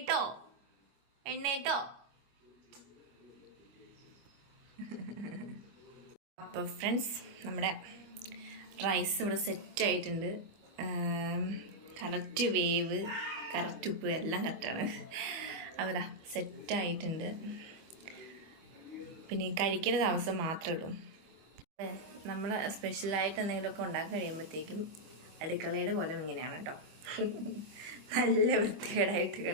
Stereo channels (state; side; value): late; left; 25 ms